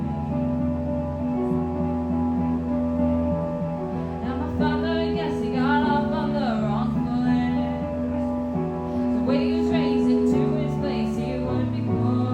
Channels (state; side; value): identical; both; correlation 1.00